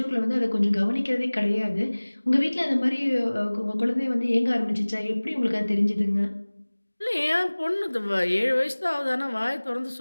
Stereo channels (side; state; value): both; inverted; correlation -1.00